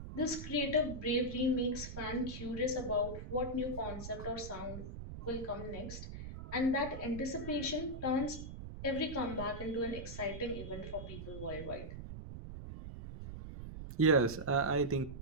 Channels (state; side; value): noise; right; rumble, 9 dB below the sound